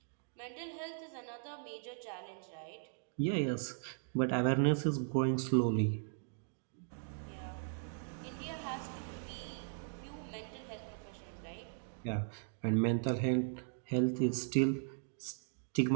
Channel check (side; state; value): left; silent; digital silence